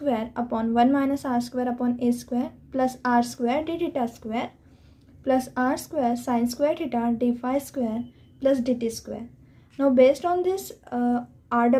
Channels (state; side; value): identical; both; correlation 1.00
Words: upon 1 minus r square upon a square plus r square d theta square plus r square sine square theta d phi square plus dt square. Now based on this